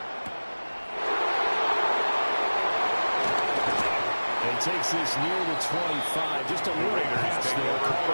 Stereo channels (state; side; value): inverted; both; correlation -1.00